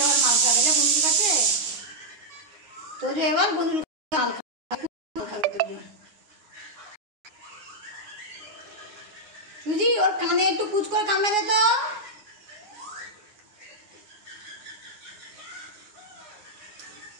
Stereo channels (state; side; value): late; left; 9.6 ms